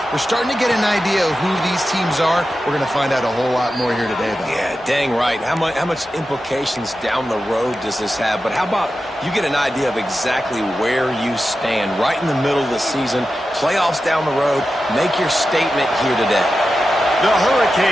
We're starting to get an idea of who these teams are. We're going to find out a whole lot more here today, though. Yeah, dang right. How much implications down the road does this have? But how about you get an idea of exactly where you stand right in the middle of the season, playoffs down the road, make your statement here today. The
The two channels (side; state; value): both; normal; correlation 0.92